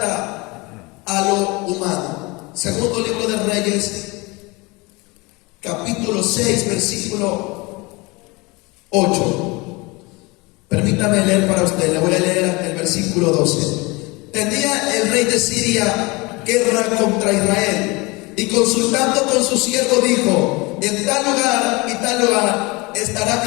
a lo humano. Segundo libro de Reyes, capítulo 6, versículo 8. Permítame leer para usted, le voy a leer el versículo 12. tenía el rey de Siria guerra contra Israel, y consultando con su siervo dijo: en tal lugar y tal lugar estará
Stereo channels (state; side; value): quieter; right; 25.2 dB